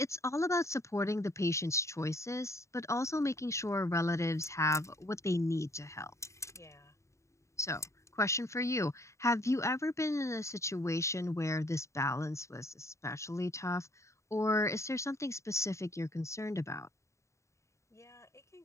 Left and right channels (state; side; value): late; right; 0.14 ms